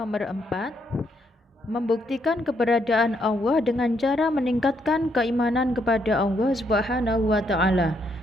4, membuktikan keberadaan Allah dengan cara meningkatkan keimanan kepada Allah Subhanahu wa Ta'ala.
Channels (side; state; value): both; normal; correlation 0.75